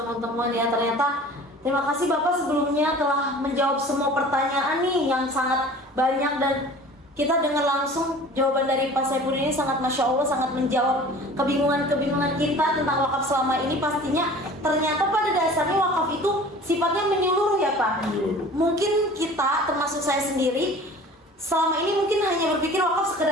ya, ternyata terima kasih Bapak sebelumnya telah menjawab semua pertanyaan nih yang sangat banyak, dan kita dengar langsung jawaban dari Pak Saifuddin ini sangat Masya Allah, sangat menjawab kebingungan-kebingungan kita tentang wakaf selama ini. Pastinya ternyata pada dasarnya wakaf itu sifatnya menyeluruh ya Pak. Mungkin kita, termasuk saya sendiri, selama ini mungkin hanya berpikir wakaf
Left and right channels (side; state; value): both; normal; correlation 0.44